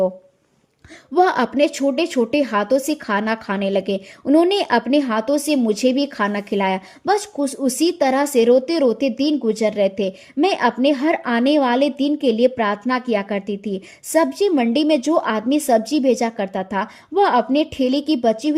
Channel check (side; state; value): both; identical; correlation 1.00